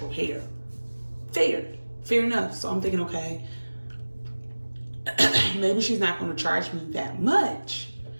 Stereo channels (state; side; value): inverted; both; correlation -1.00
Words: hair. Fair enough. So I'm thinking, okay, maybe she's not going to charge me that much